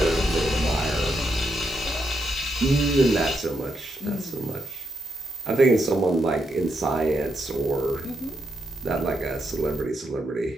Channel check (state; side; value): normal; both; correlation 0.81